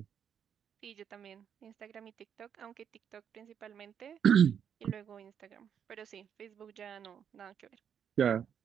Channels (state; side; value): quieter; left; 8.2 dB